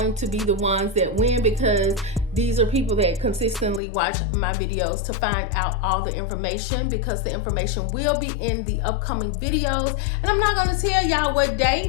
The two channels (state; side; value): drops out; right; at 3.8 s